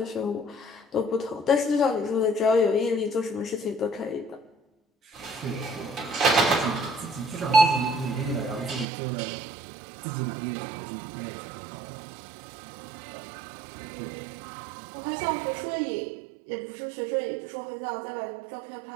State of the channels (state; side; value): drops out; left; at 8.8 s